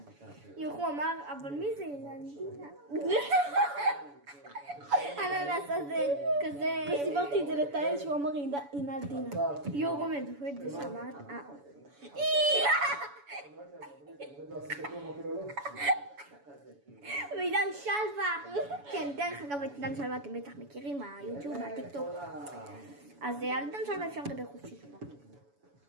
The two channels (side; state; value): left; late; 7.0 ms